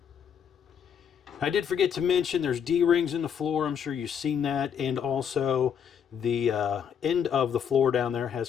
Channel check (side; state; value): right; quieter; 7.9 dB